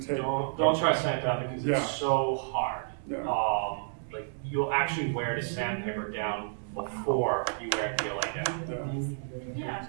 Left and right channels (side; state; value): left; silent; digital silence